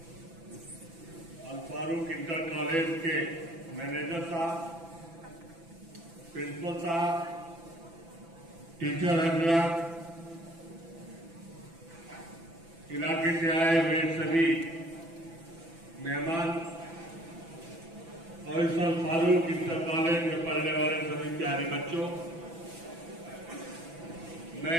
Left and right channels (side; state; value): left; late; 6.0 ms